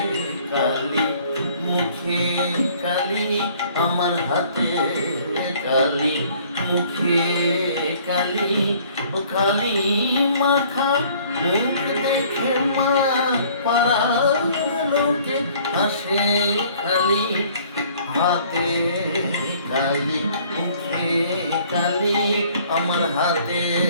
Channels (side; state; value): both; inverted; correlation -0.56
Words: কালি মুখে কালি, আমার হাতে কালি মুখে কালি। ও কালি মাখা মুখ দেখে মা পাড়ার লোকে হাসে খালি। হাতে কালি মুখে কালি, আমার হাতে